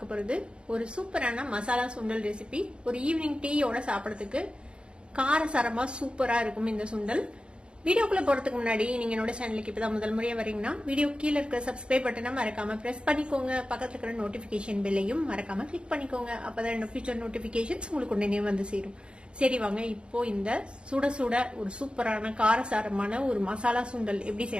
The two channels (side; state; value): left; late; 0.055 ms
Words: போறது ஒரு சூப்பரான மசாலா சுண்டல் ரெசிபி. ஒரு ஈவினிங் டீயோட சாப்பிடறதுக்கு காரசாரமா சூப்பரா இருக்கும் இந்த சுண்டல். வீடியோக்குள்ள போறதுக்கு முன்னாடி நீங்க என்னோட சேனலுக்கு இப்பதான் முதல் முறையா வரீங்கன்னா வீடியோ கீழே இருக்கிற சப்ஸ்கிரைப் பட்டனை மறக்காம பிரஸ் பண்ணிக்கோங்க. பக்கத்துல இருக்கிற நோட்டிபிகேஷன் பெல்லையும் மறக்காம கிளிக் பண்ணிக்கோங்க. அப்பதான் என்னோட ஃபியூச்சர் நோட்டிபிகேஷன்ஸ் உங்களுக்கு உடனே வந்து சேரும். சரி வாங்க, இப்போ இந்த சுட சுட ஒரு சூப்பரான காரசாரமான ஒரு மசாலா சுண்டல் எப்படி